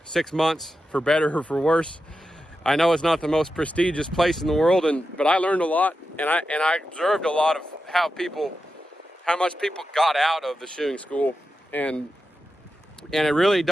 6 months, for better or for worse. I know it's not the most prestigious place in the world, but I learned a lot, and I observed a lot of how much people got out of the shoeing school, and it really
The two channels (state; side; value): normal; both; correlation 0.90